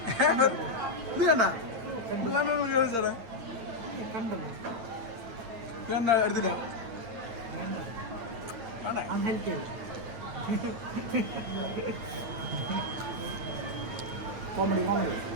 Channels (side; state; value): left; late; 9.1 ms